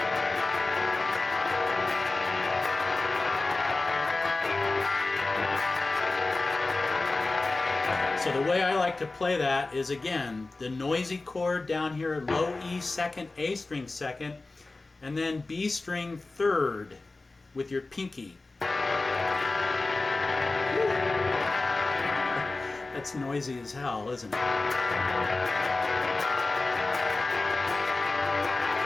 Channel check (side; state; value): right; quieter; 3.3 dB